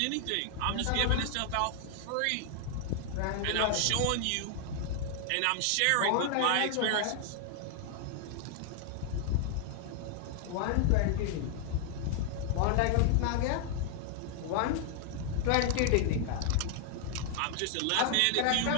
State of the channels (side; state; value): both; different; correlation 0.00